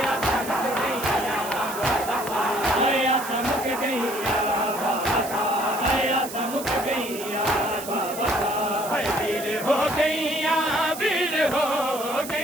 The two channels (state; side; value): noise; right; hiss, 11 dB below the sound